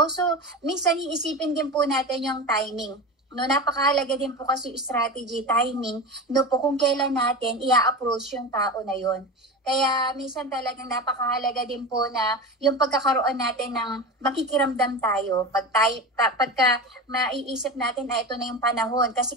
so minsan iisipin din po natin yung timing. No, napakahalaga din po kasi yung strategy, timing, no po, kung kailan natin i-approach yung tao na yon. Kaya minsan talagang napakahalaga din po na yung pagkakaroon natin ng makikiramdam tayo. Pagka maiisip natin na ito na yung panahon, kasi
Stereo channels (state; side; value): normal; both; correlation 0.26